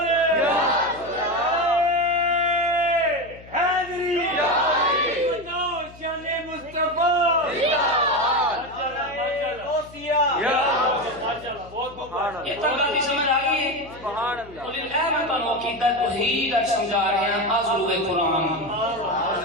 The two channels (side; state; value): left; noise; hum, 20 dB below the sound